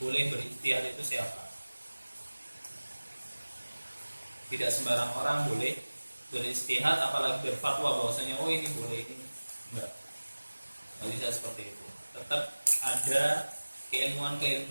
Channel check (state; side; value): inverted; both; correlation -1.00